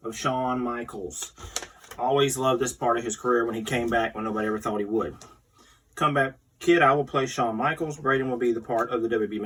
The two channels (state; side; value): identical; both; correlation 1.00